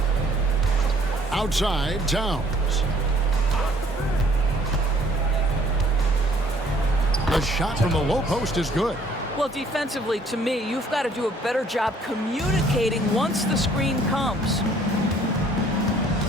Outside, Towns. The shot from the low post is good. Well, defensively, to me, you've got to do a better job communicating once the screen comes.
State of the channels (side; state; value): both; normal; correlation 0.60